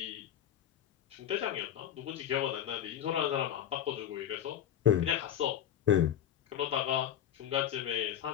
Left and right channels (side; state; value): right; quieter; 10.3 dB